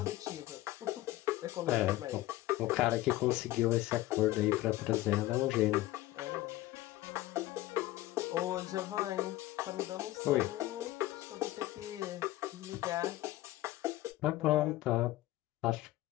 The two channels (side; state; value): right; quieter; 16.5 dB